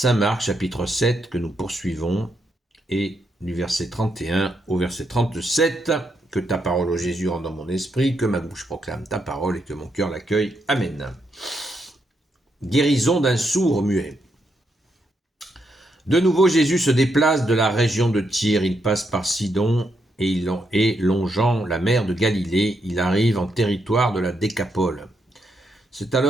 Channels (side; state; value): both; normal; correlation 0.80